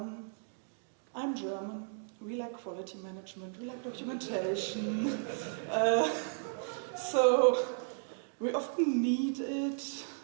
I'm German, we like quality management, we like documentation, so we often need it.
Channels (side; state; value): left; silent; digital silence